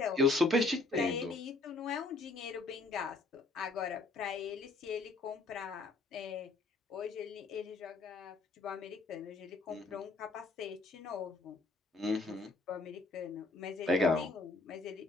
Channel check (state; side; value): quieter; right; 3.2 dB